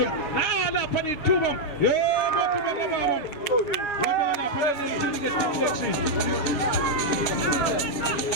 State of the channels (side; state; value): right; late; 7.3 ms